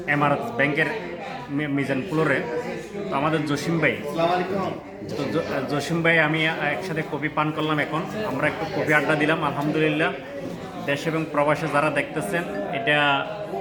এমারত ব্যাংকের মিজান ফ্লোরে। তো আমাদের জসিম ভাই, জসিম ভাই আমি একসাথে কফি পান করলাম। এখন আমরা একটু কফি আড্ডা দিলাম। আলহামদুলিল্লাহ, দেশ এবং প্রবাসে যারা দেখতেছেন, এটা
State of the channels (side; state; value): both; identical; correlation 1.00